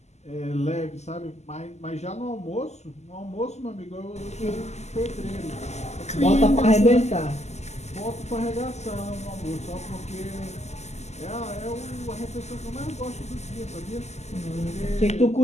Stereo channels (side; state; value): right; late; 0.33 ms